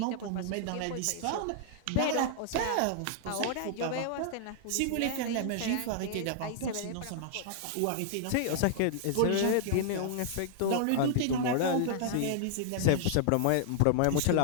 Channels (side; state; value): both; different; correlation -0.01